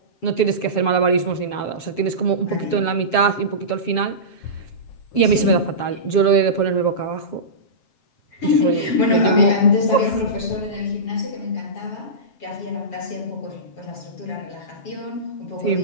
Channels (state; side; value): late; right; 7.5 ms